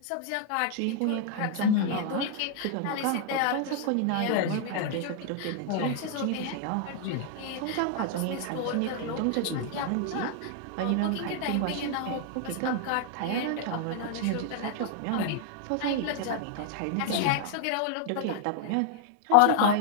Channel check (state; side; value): different; both; correlation 0.00